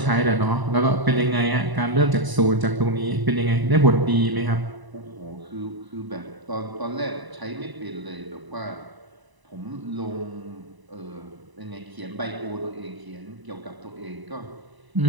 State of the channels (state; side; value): late; left; 1.0 ms